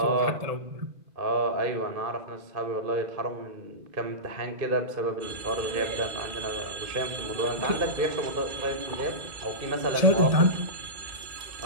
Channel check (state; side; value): late; left; 1.8 ms